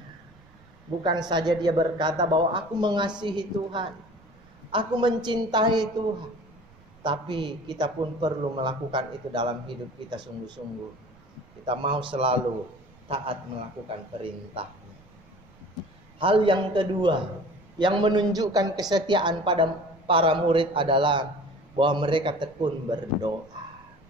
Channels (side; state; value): right; noise; rumble, 27 dB below the sound